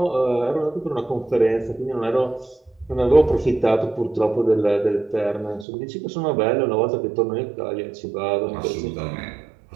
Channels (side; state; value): left; drops out; at 5.7 s